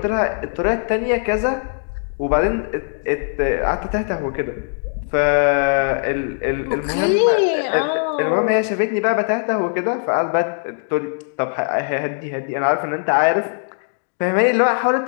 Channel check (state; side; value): silent; right; digital silence